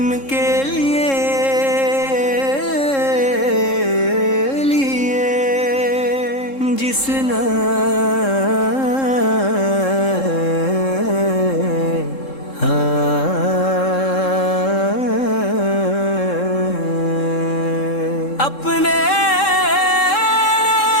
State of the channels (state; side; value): late; right; 3.7 ms